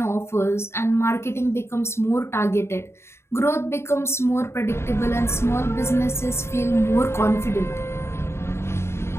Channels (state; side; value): late; right; 0.12 ms